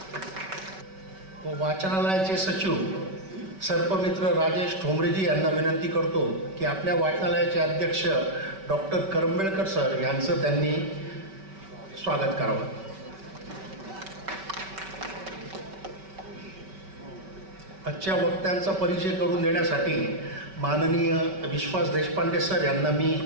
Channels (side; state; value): left; late; 5.2 ms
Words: व वाचनालयाचे सचिव सर्पमित्र राजेश ठोंबरेजी यांना विनंती करतो की आपल्या वाचनालयाचे अध्यक्ष डॉक्टर करंबेळकर सर यांचं त्यांनी स्वागत करावं। आजच्या वक्त्यांचा परिचय करून देण्यासाठी माननीय विश्वास देशपांडे सर यांना मी